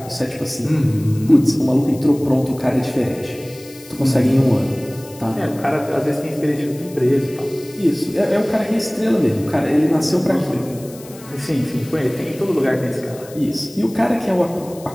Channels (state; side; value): noise; left; hiss, 20 dB below the sound